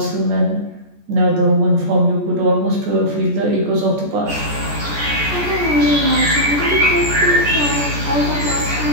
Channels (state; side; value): late; left; 14 ms